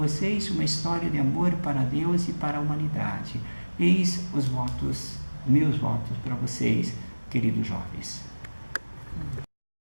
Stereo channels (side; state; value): both; inverted; correlation -1.00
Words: uma história de amor para Deus e para a humanidade. Eis os votos, meus votos para vocês, queridos jovens.